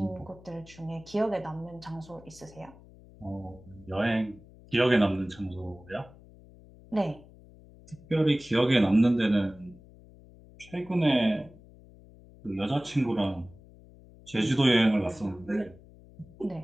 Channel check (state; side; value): noise; left; hum, 22 dB below the sound